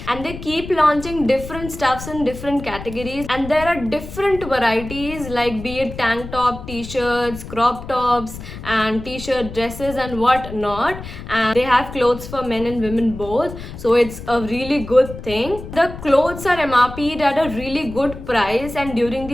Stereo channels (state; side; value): noise; left; rumble, 12 dB below the sound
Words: and they keep launching different stuffs in different categories, and there are different varieties like be it tank top, t-shirts, crop tops and t-shirt dresses and what not, and they have clothes for men and women both, so it's a really good thing. The clothes are MRP'd at a really good price, and during